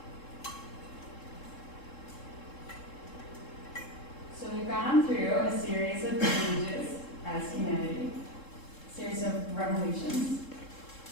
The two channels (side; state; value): right; late; 3.7 ms